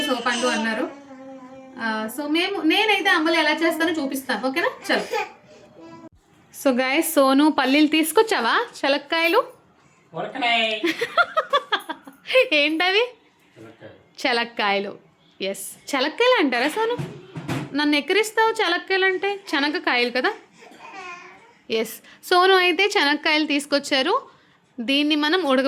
సోపండు అన్నారు. సో నేనైతే అంబలి ఎలా చేస్తానో చూపిస్తాను. ఓకేనా, చలో. సో గైస్, సోను పల్లీలు తీసుకొచ్చావా? శనక్కాయలు ఏంటవి? శనక్కాయలు. ఎస్, శనక్కాయలు అంటారా సోను? నన్ను ఎక్కిరిస్తావు. శనక్కాయలు అంటే శనగకాయలు కదా. ఎస్, సోను అయితే శనక్కాయలు తీసుకొచ్చారు. దీన్ని మనం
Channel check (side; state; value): both; identical; correlation 1.00